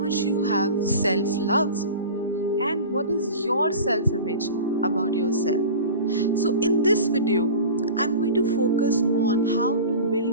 you have self-love, and what is your self-image about yourself. So in this video, I'm going to focus on how to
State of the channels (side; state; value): both; inverted; correlation -0.35